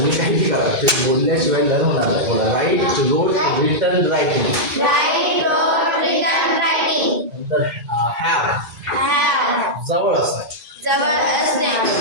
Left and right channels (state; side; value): late; left; 2.4 ms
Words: काही करा, ते बोलल्याशिवाय लर्न होणार नाही. बोला राईट, रोट, रिटन, रायटिंग. नंतर हॅव, जवळ असणे,